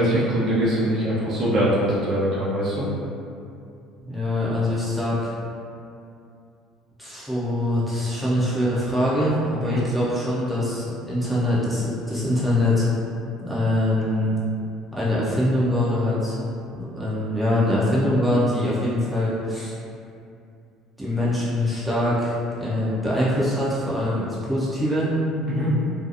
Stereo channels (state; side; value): normal; both; correlation 0.62